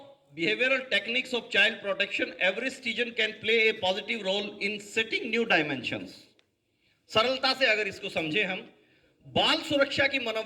behavioral techniques of child protection, every citizen can play a positive role in setting new dimensions. सरलता से अगर इसको समझे हम, बाल सुरक्षा की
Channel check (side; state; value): both; identical; correlation 1.00